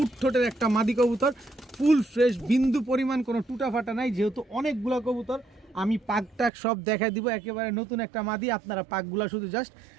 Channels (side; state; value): left; drops out; at 6.5 s